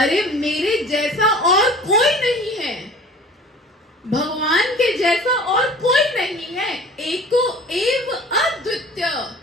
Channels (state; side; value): normal; both; correlation 0.44